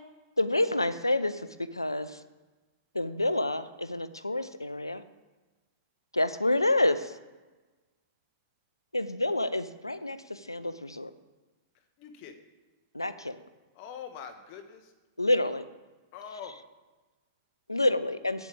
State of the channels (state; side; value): inverted; both; correlation -0.90